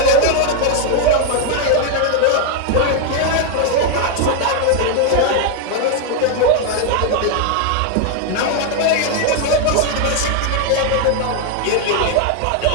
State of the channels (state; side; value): different; both; correlation 0.01